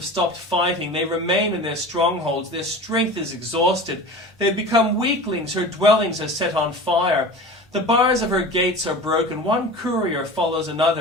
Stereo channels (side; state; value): both; normal; correlation 0.35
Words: stopped fighting. They remain in their strongholds. Their strength is exhausted. They have become weaklings. Her dwellings are set on fire. The bars of her gates are broken. One courier follows